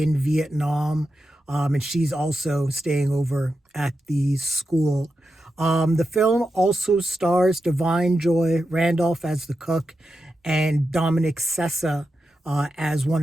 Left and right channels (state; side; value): normal; both; correlation 0.89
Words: Vietnam, and she's also staying over at the school. The film also stars Joy Randolph as the cook and Dominic Sessa as one